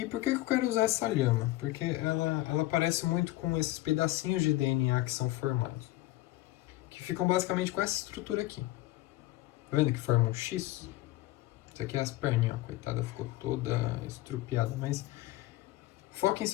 por que eu quero usar essa lhama? Porque ela parece muito com esses pedacinhos de DNA que são formados. Que ficam basicamente com essa estrutura aqui. Tá vendo que forma um X? Isso aqui é as perninhas, ó, coitada, ficou toda estrupiada, mas foquem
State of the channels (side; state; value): right; quieter; 17.1 dB